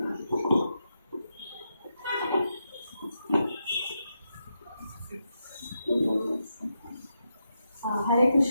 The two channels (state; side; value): inverted; both; correlation -0.85